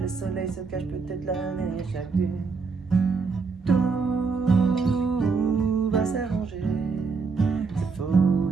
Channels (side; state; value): left; quieter; 4.7 dB